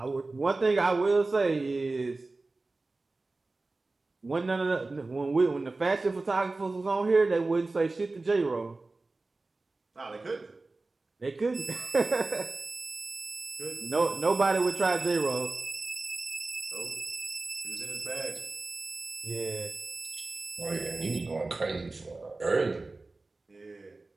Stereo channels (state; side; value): quieter; left; 3.4 dB